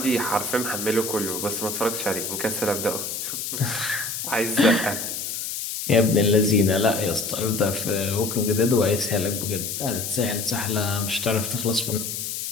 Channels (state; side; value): noise; left; hiss, 4 dB below the sound